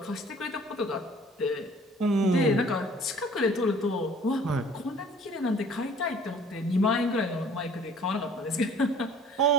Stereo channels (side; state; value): both; normal; correlation 0.52